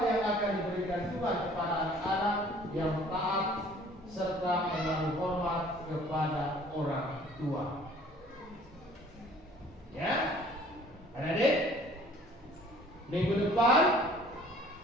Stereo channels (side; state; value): both; normal; correlation 0.53